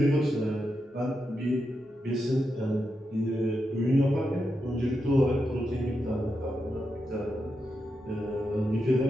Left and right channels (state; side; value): normal; both; correlation 0.86